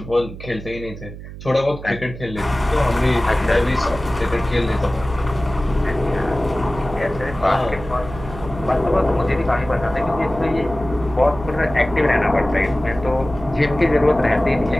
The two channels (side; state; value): right; noise; hum, 13 dB below the sound